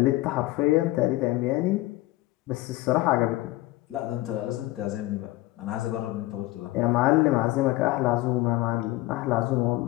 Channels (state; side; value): quieter; right; 18.5 dB